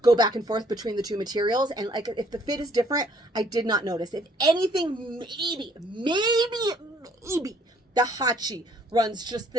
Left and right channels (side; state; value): both; normal; correlation 0.62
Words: go back and forth between the 2 materials. And like, if the fit is different, I did not notice. If anything, maybe the hachi runs just